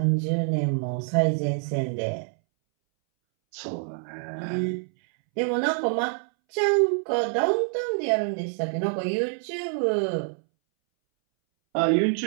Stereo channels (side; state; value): left; silent; 61 dB below the other